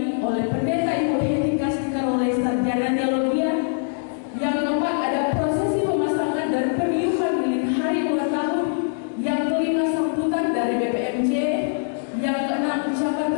oleh pendeta Ibu Heti Kastika oleh sarjana teologi. Yang keempat ada prosesi pemasangan dan peniupan lilin hari ulang tahun. Yang kelima sambutan dari BPMJ. Yang keenam ucapan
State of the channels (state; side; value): silent; right; digital silence